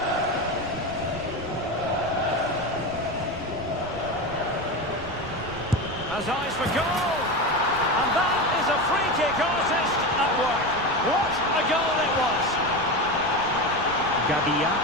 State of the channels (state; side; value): noise; right; rumble, 14 dB below the sound